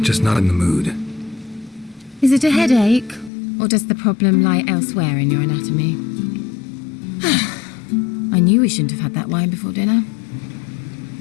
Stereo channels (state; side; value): drops out; right; at 3.3 s